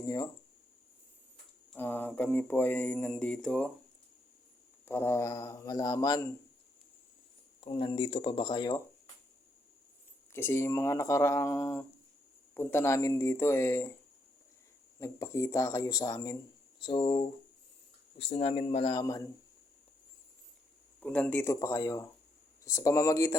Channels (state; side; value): normal; both; correlation 0.77